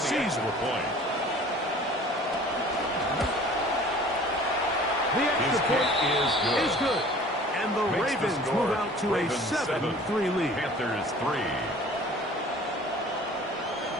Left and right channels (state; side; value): normal; both; correlation 0.47